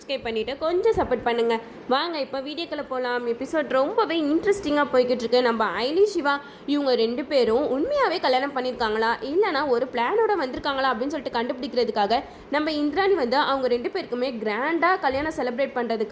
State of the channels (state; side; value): identical; both; correlation 1.00